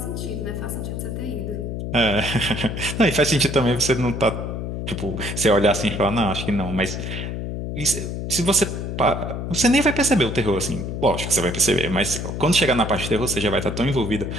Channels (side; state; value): left; noise; hum, 5 dB below the sound